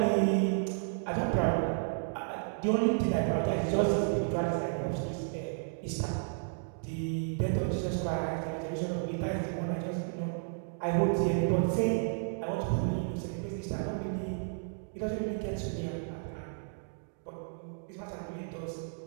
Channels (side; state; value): left; silent; digital silence